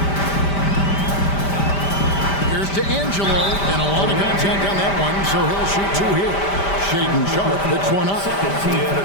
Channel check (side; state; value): right; late; 5.1 ms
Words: Here's D'Angelo, and a lot of contact on that one, so he'll shoot 2 here. Shaden Sharp picks one up. Yeah, the